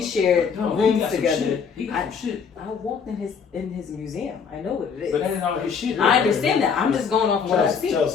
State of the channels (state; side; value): quieter; right; 6.3 dB